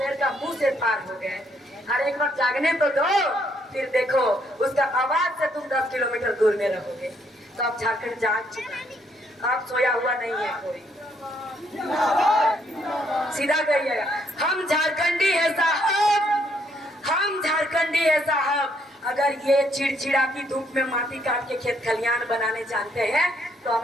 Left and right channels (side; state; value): both; normal; correlation 0.71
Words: का मुंह से पार हो गए। और एक बार जागने तो दो, फिर देखो उसका आवाज से तुम 10 किलोमीटर दूर में रहोगे। सब झारखंड जाग चुका है, अब सोया हुआ नहीं है कोई। सीधा कहिएगा, हम झारखंडी है साहब, हम झारखंडी है साहब। अगर ये चिड़चिड़ा की धूप में माटी काट के खेत खलियान बनाने जानते हैं तो